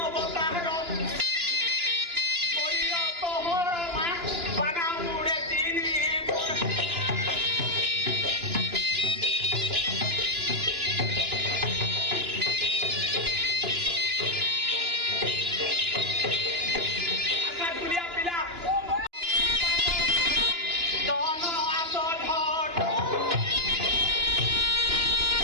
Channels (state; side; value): late; left; 2.9 ms